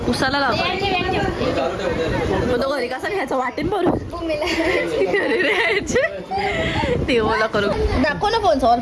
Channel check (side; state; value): both; identical; correlation 1.00